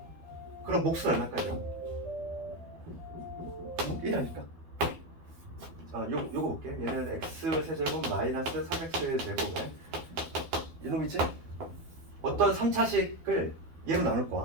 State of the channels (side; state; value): left; late; 12 ms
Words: 그럼 몫은 얼마까지야? 1하니까. 요거 볼게. 얘는 x 세제곱 마이너스 3x 제곱에 이놈이지? 어떤 3차식을 얘로 나눌